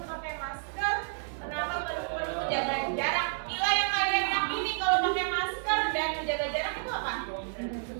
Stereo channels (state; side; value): silent; left; digital silence